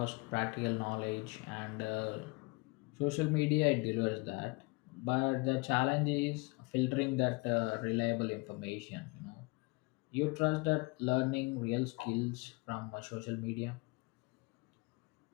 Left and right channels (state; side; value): quieter; right; 27.4 dB